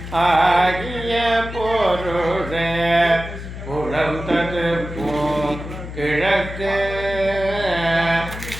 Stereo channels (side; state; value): left; noise; hum, 10 dB below the sound